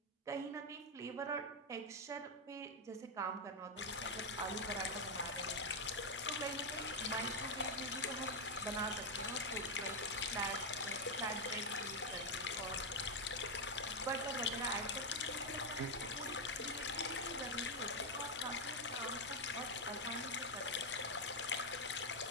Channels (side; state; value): both; normal; correlation 0.03